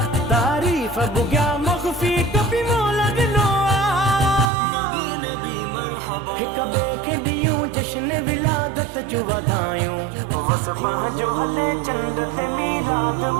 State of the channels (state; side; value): drops out; left; at 4.5 s